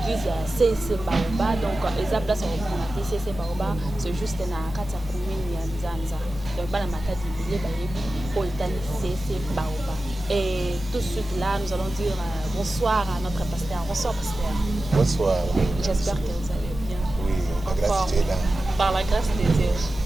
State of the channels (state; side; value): normal; both; correlation 0.94